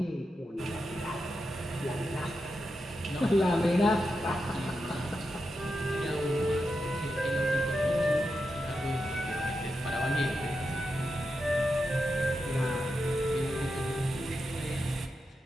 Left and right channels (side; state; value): both; normal; correlation 0.87